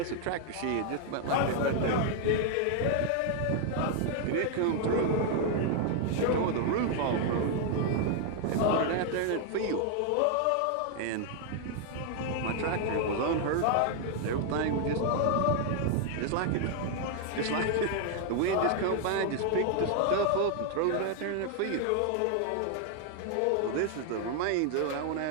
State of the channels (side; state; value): both; different; correlation 0.00